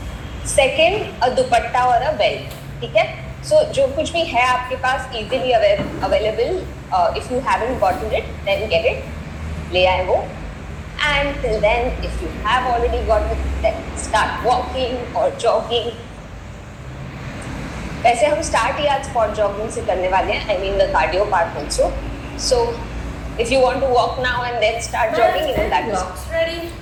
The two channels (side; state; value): both; identical; correlation 1.00